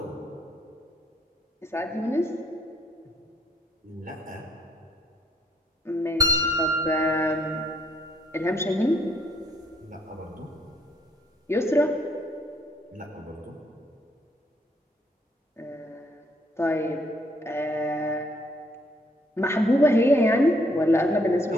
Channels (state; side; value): normal; both; correlation 0.69